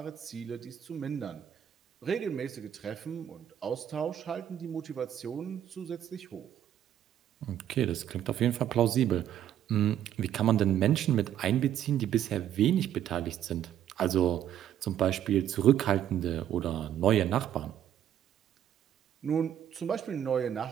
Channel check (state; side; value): quieter; left; 10.5 dB